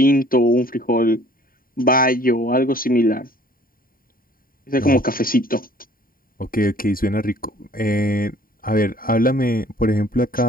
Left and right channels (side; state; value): right; late; 0.41 ms